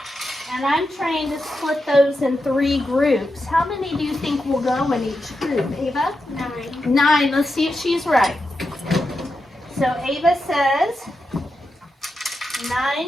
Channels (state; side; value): normal; both; correlation 0.87